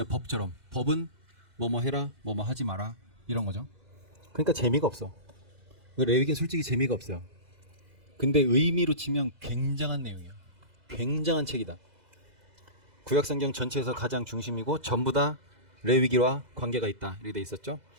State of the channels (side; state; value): left; late; 2.0 ms